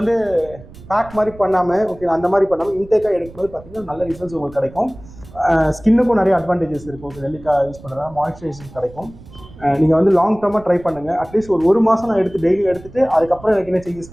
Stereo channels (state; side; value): noise; right; rumble, 19 dB below the sound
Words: பேக் மாதிரி பண்ணாமல், ஓகே, அந்த மாதிரி பண்ணாமல் இன்டேக்காக எடுக்கும்போது பார்த்தீங்கன்னா நல்ல ரிசல்ட்ஸ் உங்களுக்கு கிடைக்கும். ஸ்கின்னுக்கும் நிறைய அட்வான்டேஜஸ் இருக்கும். ஓகே, நெல்லிக்காய் யூஸ் பண்ணுறதா மாய்ஸ்சரைசேஷன் கிடைக்கும். நீங்கள் வந்து லாங் டேர்மாக ட்ரை பண்ணுங்கள். அட்லீஸ்ட் ஒரு மாதம் நான் டெய்லி எடுத்துகிட்டு அதுக்கப்புறம் எனக்கு என்ன